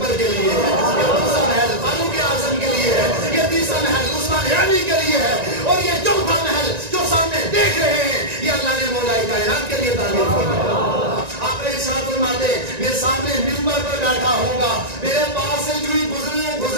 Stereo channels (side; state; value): left; late; 1.9 ms